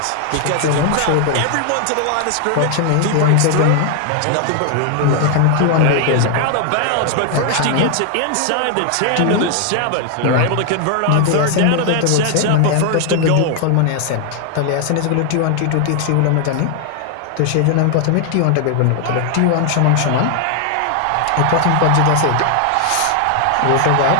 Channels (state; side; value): different; both; correlation 0.00